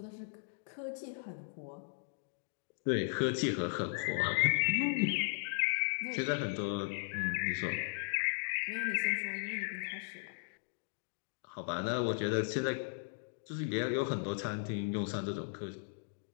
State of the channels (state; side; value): silent; right; digital silence